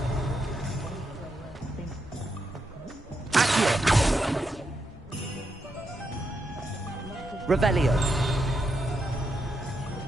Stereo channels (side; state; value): both; normal; correlation 0.83